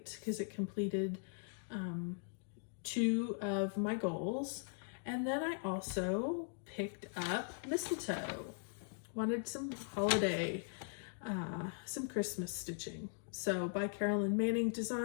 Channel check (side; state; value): right; silent; digital silence